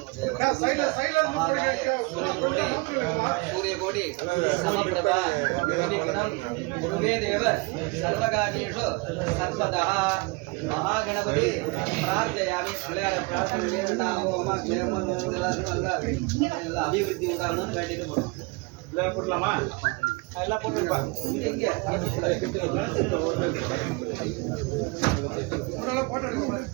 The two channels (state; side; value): quieter; left; 27.5 dB